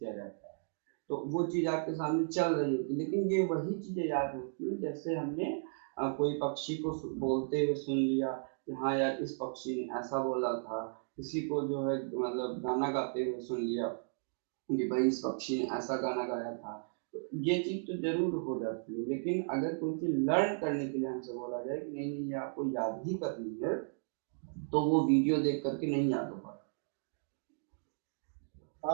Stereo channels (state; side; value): silent; left; digital silence